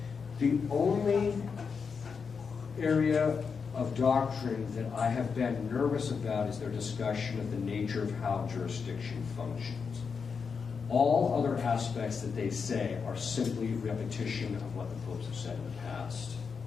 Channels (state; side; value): quieter; right; 5.7 dB